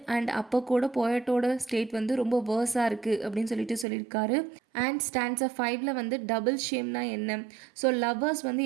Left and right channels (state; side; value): drops out; left; at 3.9 s